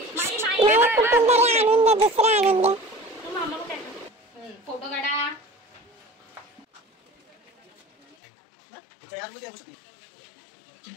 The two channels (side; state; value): right; drops out; at 8.2 s